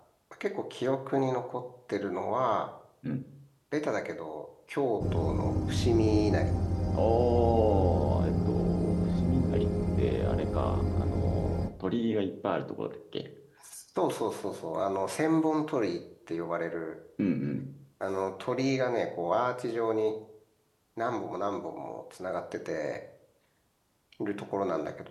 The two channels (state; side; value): identical; both; correlation 1.00